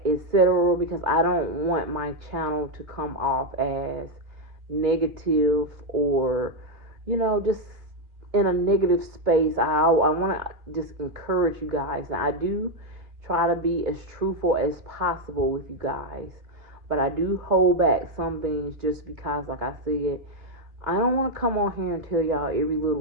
etc., because I don't want my channel to come off as negative or, just in a negative space. I want to just encourage you guys. Now, I do try to be as truthful as possible with you guys, but I do hold back some things just because, like I said, I don't want to come on here and tell y'all every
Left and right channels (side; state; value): left; late; 2.8 ms